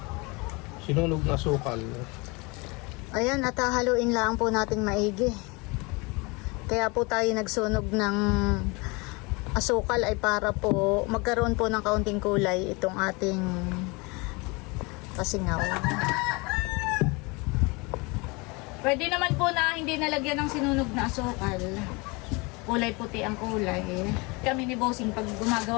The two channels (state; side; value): quieter; right; 27.3 dB